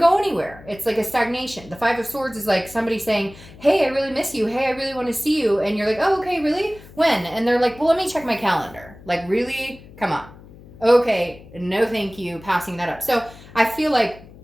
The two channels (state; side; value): noise; left; hum, 20 dB below the sound